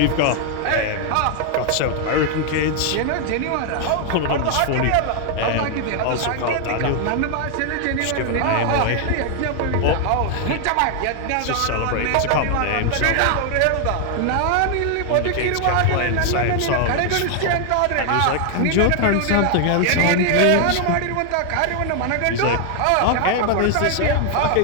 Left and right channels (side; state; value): both; different; correlation 0.00